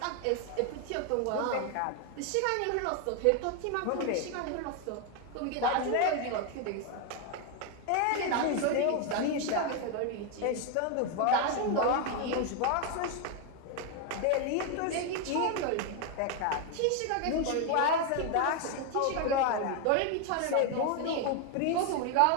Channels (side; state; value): both; different; correlation 0.01